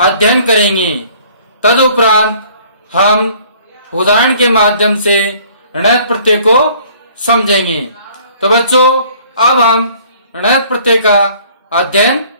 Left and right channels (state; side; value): inverted; both; correlation -0.55